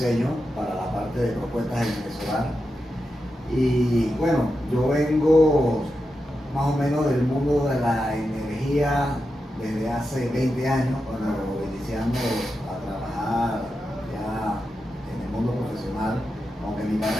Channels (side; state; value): both; normal; correlation 0.89